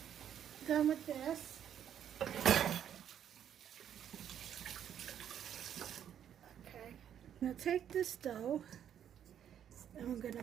Done with this. Okay, now take this dough and I'm going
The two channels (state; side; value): quieter; left; 9.5 dB